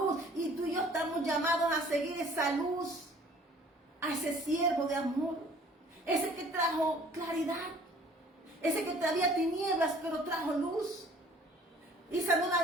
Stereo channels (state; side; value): normal; both; correlation 0.53